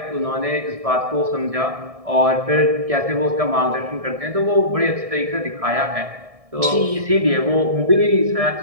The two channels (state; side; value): late; left; 1.6 ms